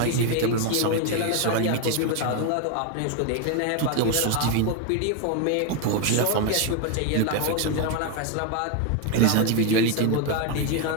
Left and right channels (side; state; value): both; different; correlation 0.01